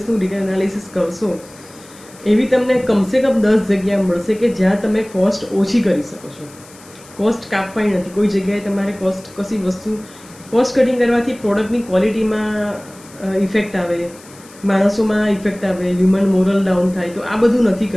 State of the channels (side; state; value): left; noise; hiss, 22 dB below the sound